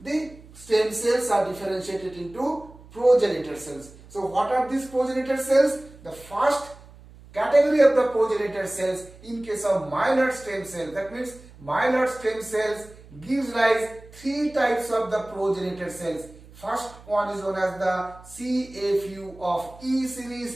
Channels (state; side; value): noise; right; hum, 21 dB below the sound